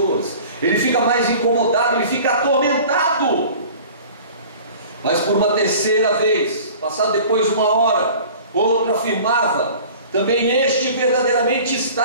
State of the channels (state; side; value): inverted; both; correlation -0.44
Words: ele fica mais incomodado, ele fica atormentado. Mas por uma terceira vez, passado depois de uma hora, outro afirmava: também este verdadeiramente